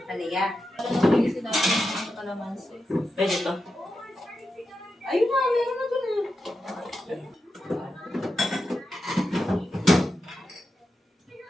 Halika. Pwede to. Ayun na, meron na doon.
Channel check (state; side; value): normal; both; correlation 0.89